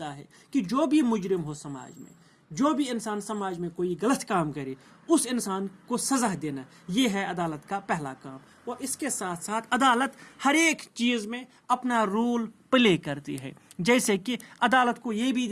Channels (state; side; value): identical; both; correlation 1.00